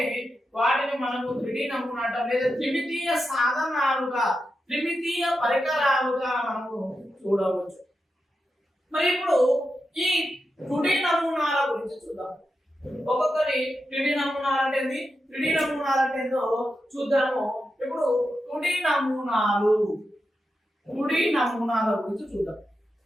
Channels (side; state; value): both; normal; correlation 0.88